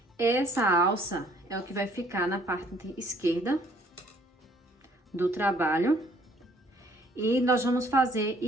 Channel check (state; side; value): normal; both; correlation 0.61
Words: Essa alça é o que vai ficar na parte esquerda do trabalho. E nós vamos fazer